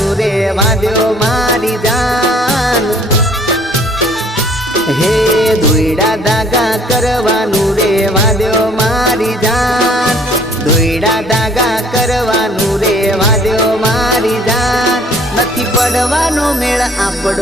રે વાદ્યો મારી જાન હે દોયડા ધાગા કરવાનું રે વાદ્યો મારી જાન દોયડા ધાગા કરવાનું રે વાદ્યો મારી જાન નથી પડવાનો મેળ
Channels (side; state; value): both; normal; correlation 0.57